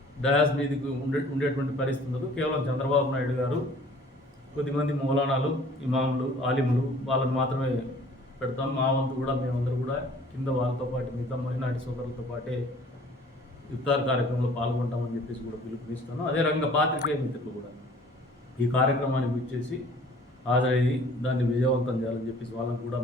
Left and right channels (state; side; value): normal; both; correlation 0.52